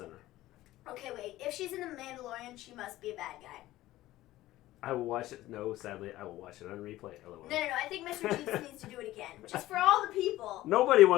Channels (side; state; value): right; quieter; 16.0 dB